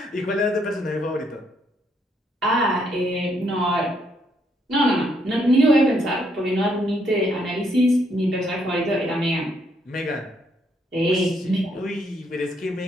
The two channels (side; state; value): both; normal; correlation 0.72